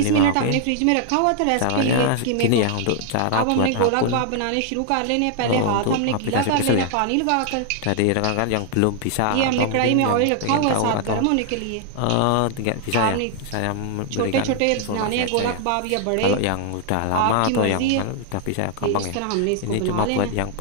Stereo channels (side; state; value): both; different; correlation 0.00